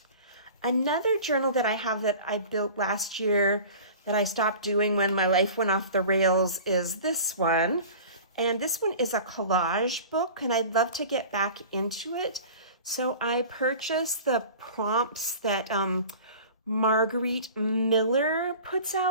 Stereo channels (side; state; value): both; inverted; correlation -0.40